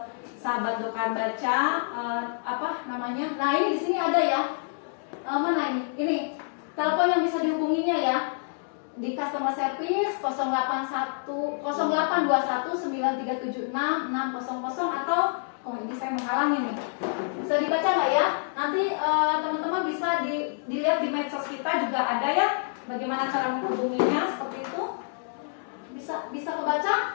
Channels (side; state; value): right; silent; digital silence